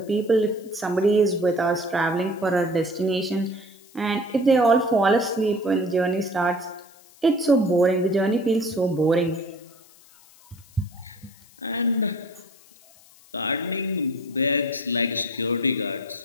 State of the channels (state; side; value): noise; left; hiss, 26 dB below the sound